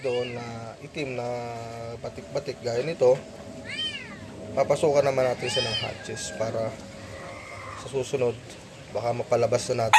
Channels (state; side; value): identical; both; correlation 1.00